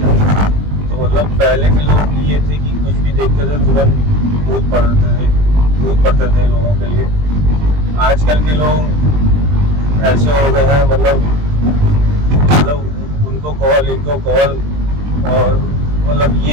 तो मतलब पहले के लोग ये थे कि कुछ भी देखते थे तुरंत कूद पड़ते थे लोगों के लिए। आजकल के लोग ऐसे हो गए हैं, मतलब उनको कॉल इनको कॉल, और मतलब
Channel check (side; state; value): left; late; 20 ms